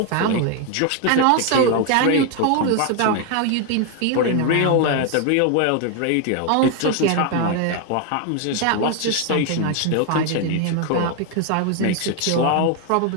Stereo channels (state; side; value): different; both; correlation 0.01